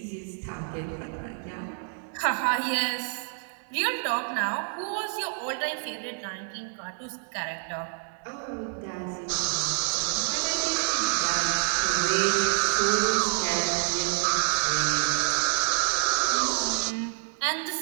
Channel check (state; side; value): silent; left; 59 dB below the other